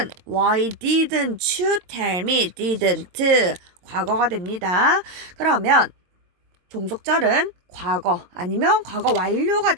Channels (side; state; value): left; late; 22 ms